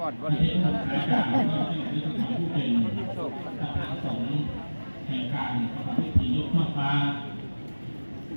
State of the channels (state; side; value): inverted; both; correlation -1.00